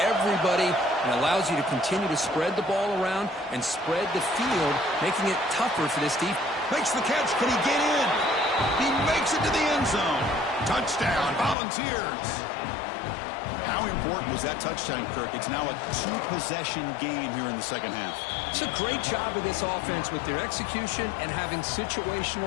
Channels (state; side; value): drops out; right; at 11.6 s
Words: and allows you to continue to spread the ball around and spread the field, making it tougher for this defense. Makes the catch. Can he get in? He makes it to the end zone. Touchdown, Volunteers. How important was that touchdown, Kirk? It's now a two-possession game here in the second half. It's a great job of this offense with their execution and having